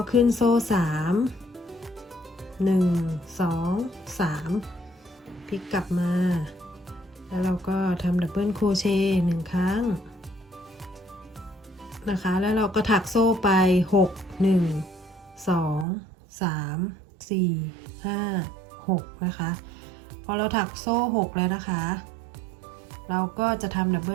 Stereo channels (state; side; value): drops out; left; at 15.9 s